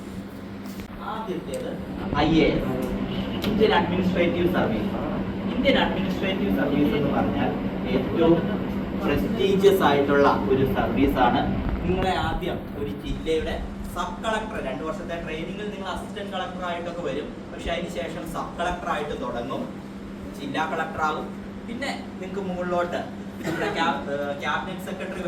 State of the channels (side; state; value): both; identical; correlation 1.00